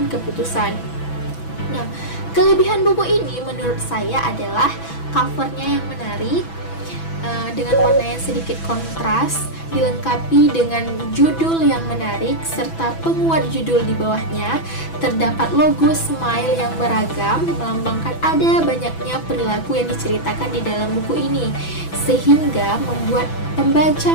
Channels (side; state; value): right; late; 6.1 ms